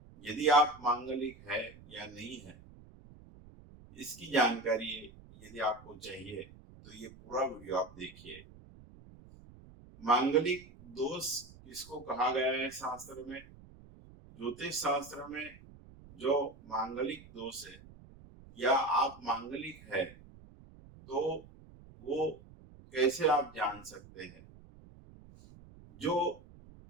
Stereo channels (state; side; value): noise; right; rumble, 21 dB below the sound